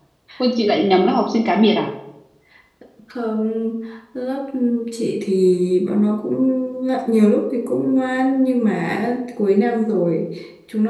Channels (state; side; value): identical; both; correlation 1.00